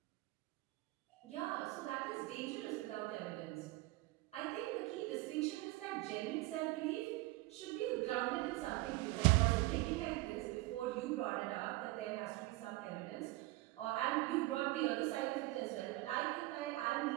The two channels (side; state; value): left; quieter; 20.0 dB